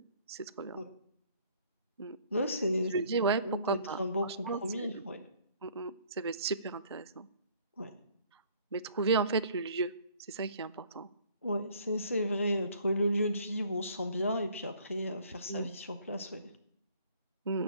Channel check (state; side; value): inverted; both; correlation -0.57